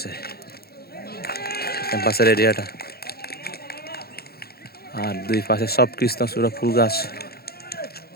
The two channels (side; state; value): right; late; 0.46 ms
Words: ক্যাম্পাসের এরিয়াটা। আর দুই পাশে সব কৃষ্ণচূড়া ফুল গাছ।